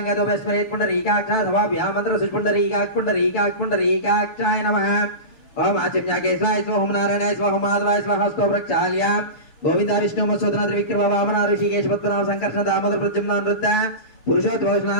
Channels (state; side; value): late; right; 6.6 ms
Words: వేశ్వరేత్ పుండరీకాక్షాయ వా వ్యామంత్ర పుండరీకాక్షాయ నమః. ఓం ఆచమ్యాకేశ్వాయ స్వ. ఓం నారాయణాయ స్వ. ఓం మాధవాయ స్వ. హస్తో ప్రక్షాళ్య గోవింద విష్ణు మత్స్యోధన త్రివిక్రమ వామన ఋషికేశ పద్మనాభ సంకర్షణ దామోదర ప్రద్యుమ్న నృత్య పురుషోత్తమ